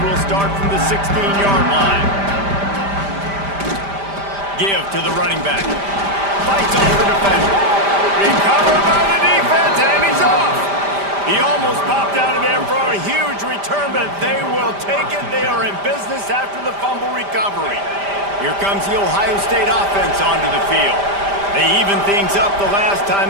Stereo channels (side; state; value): left; late; 5.0 ms